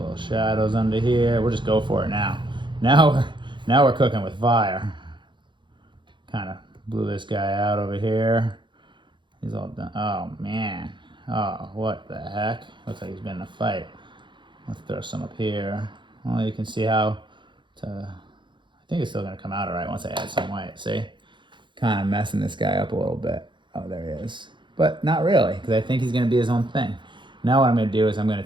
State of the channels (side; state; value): left; late; 0.23 ms